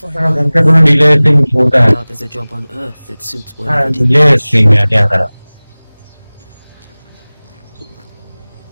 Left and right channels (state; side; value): inverted; both; correlation -1.00